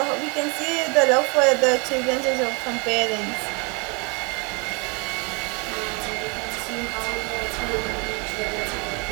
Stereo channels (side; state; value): left; quieter; 31.7 dB